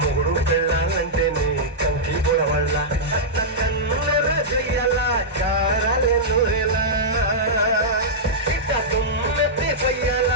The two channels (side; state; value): both; normal; correlation -0.10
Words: పెళ్ళాలంటే నీ కంకి పొడవళ్ళ కన్నుల చెయ్యాల కారాలే నూరెలా ఇట్ట దుమ్మెత్తి పొయ్యాల